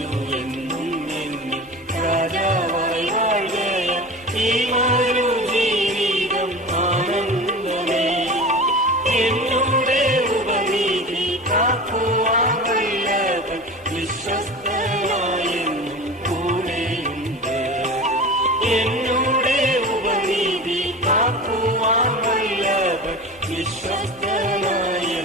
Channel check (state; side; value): normal; both; correlation 0.33